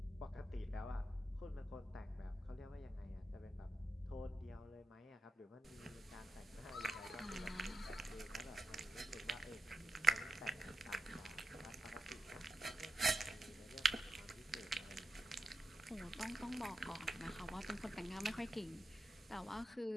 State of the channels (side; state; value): both; normal; correlation 0.90